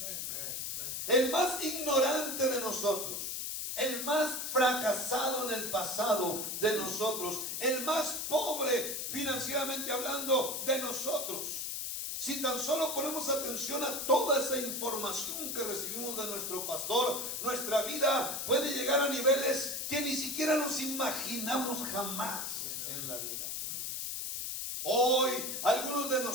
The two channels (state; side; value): noise; left; hiss, 3 dB below the sound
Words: El más ignorante de nosotros, el más fracasado en el pasado de nosotros, el más pobre financieramente hablando de nosotros, si tan solo ponemos atención a toda esa información que recibimos de nuestro pastor, nuestra vida puede llegar a niveles que ni siquiera nos imaginamos jamás en la vida. Hoy algunos de